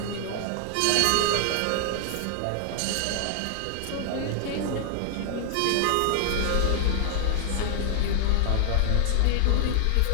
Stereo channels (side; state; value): both; different; correlation -0.01